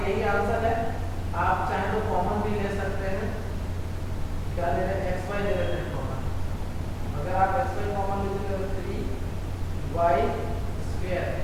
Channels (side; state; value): both; identical; correlation 1.00